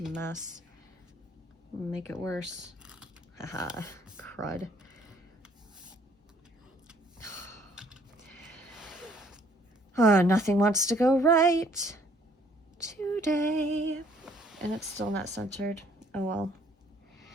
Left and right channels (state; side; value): normal; both; correlation 0.62